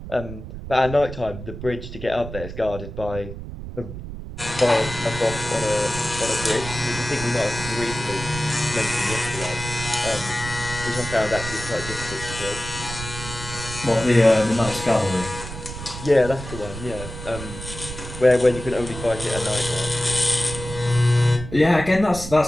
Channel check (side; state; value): right; noise; rumble, 10 dB below the sound